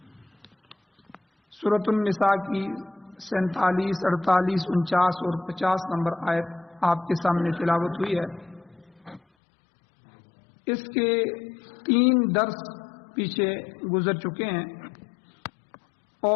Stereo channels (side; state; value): right; drops out; at 9.2 s